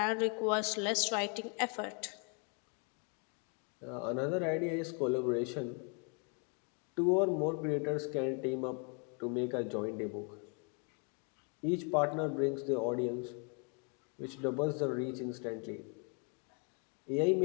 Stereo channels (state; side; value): quieter; right; 37.5 dB